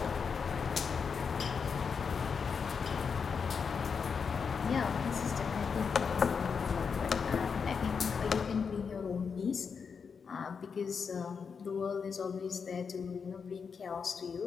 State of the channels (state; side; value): quieter; right; 6.0 dB